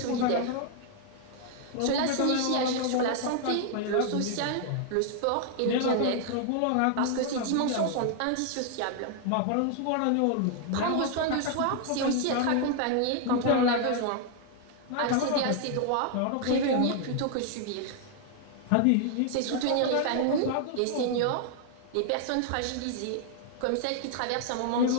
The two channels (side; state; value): both; different; correlation 0.00